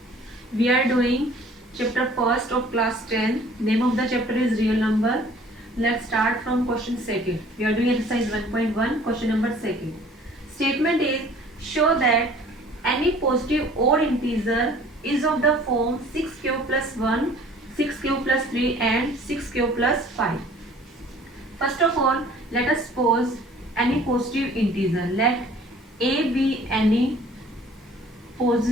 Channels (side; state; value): both; normal; correlation 0.52